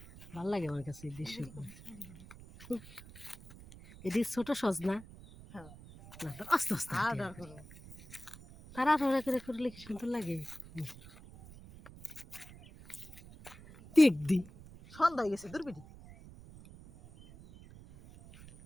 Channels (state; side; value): noise; right; rumble, 18 dB below the sound